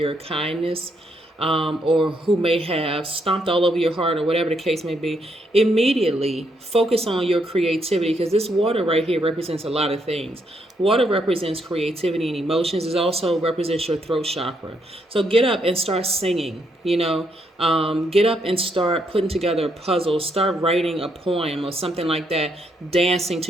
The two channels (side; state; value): both; normal; correlation 0.75